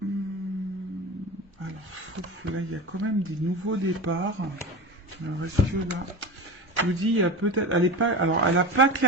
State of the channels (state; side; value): normal; both; correlation 0.27